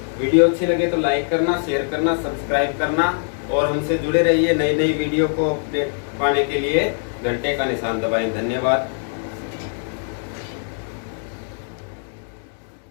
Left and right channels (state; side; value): silent; right; 57 dB below the other